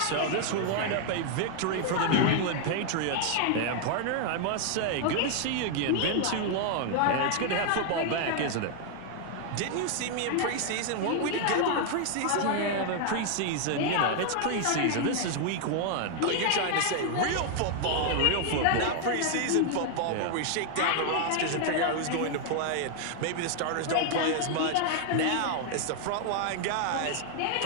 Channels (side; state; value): both; different; correlation 0.00